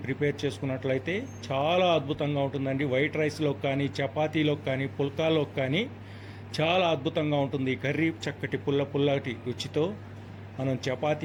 ప్రిపేర్ చేసుకున్నట్లయితే చాలా అద్భుతంగా ఉంటుందండి. వైట్ రైస్లోకి కానీ, చపాతీలోకి కానీ, పుల్కాలోకి కానీ చాలా అద్భుతంగా ఉంటుంది ఈ కర్రీ. చక్కటి పుల్లటి రుచితో మనం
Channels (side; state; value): both; identical; correlation 1.00